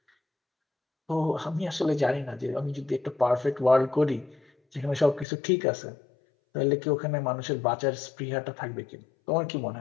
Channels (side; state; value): right; drops out; at 5.2 s